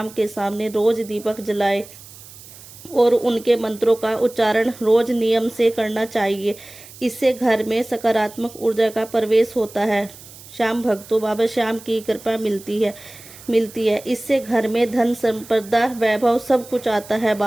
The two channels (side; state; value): right; noise; hiss, 19 dB below the sound